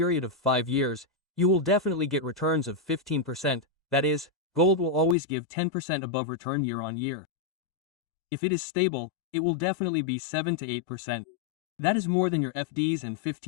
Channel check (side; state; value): right; drops out; at 5.2 s